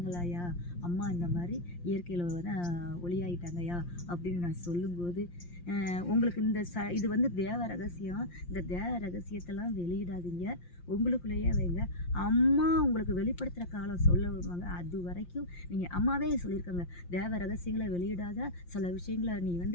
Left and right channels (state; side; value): late; right; 5.7 ms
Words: அம்மா இந்த மாதிரி இயற்கையில் தான் ஒளியாயிட்டாங்கய்யா அப்படின்னு நான் சொல்லும்போது, உங்களுக்கு இது வந்து தேவ ரகசியம். இந்த தேவ ரகசியத்தெல்லாம் வெளியிடாதீங்க, உங்களுக்குள்ளேயே வைங்க. அம்மா உங்களுக்கு வெளிப்படுத்துகிற காலம் சொல்ல வருவாங்க. அது வரைக்கும் நீங்கள் அம்மாவே சொல்லியிருக்காங்க, தேவ ரகசியங்களை வெளியிடாத, சில விஷயங்களை நீ